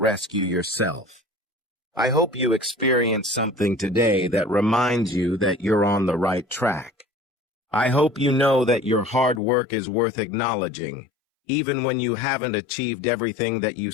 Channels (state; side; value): drops out; right; at 9.4 s